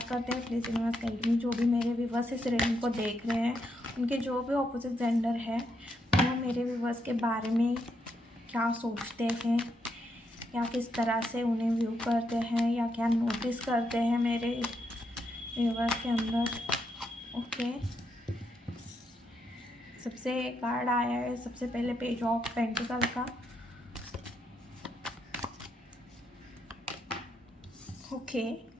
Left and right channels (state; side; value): normal; both; correlation 0.79